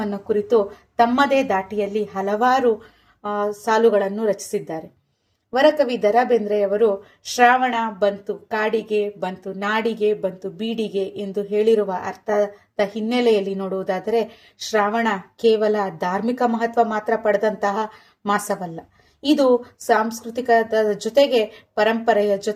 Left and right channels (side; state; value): both; identical; correlation 1.00